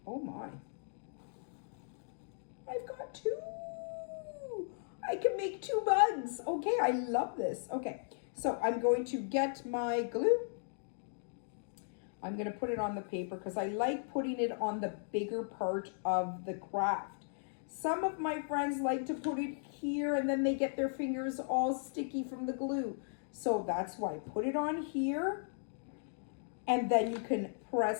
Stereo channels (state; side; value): silent; right; digital silence